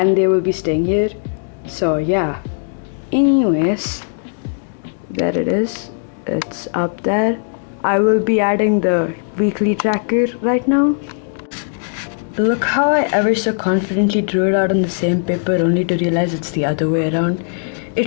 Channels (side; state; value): right; silent; digital silence